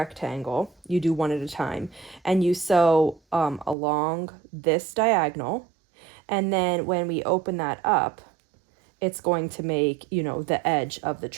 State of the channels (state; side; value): drops out; left; at 3.8 s